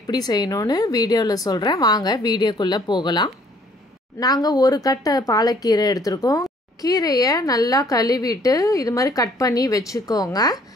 செய்யணும்னு வீடியோவில் சொல்கிறேன். வாங்க வீடியோக்குள்ளே போகலாம். நாங்கள் ஒரு கட்டை பாலக்கீரை எடுத்திருக்கோம். கீரையை நல்லா கழுவிட்டு இது மாதிரி கட் பண்ணி வச்சுக்கோங்க.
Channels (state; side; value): normal; both; correlation 0.60